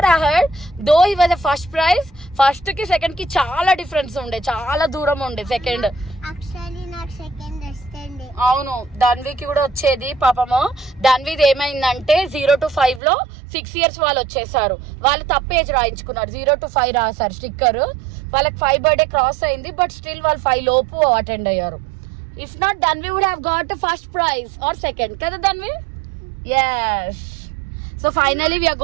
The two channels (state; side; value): drops out; left; at 13.0 s